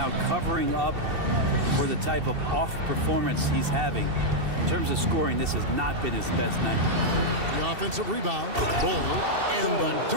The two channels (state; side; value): late; left; 2.7 ms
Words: covering up for the type of off performance he's having. In terms of scoring, this has not been his best night. The offensive rebound, Bull, and the